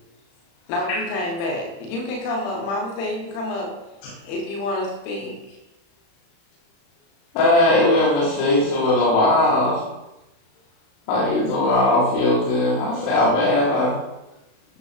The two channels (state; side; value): late; right; 36 ms